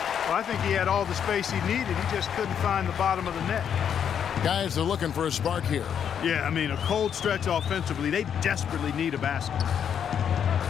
I think he had all the space he needed. He just couldn't find the bottom of the net. Guys are looking for a spark here. Yeah, I mean, a cold stretch offensively. They desperately need a basket.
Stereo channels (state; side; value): quieter; right; 8.3 dB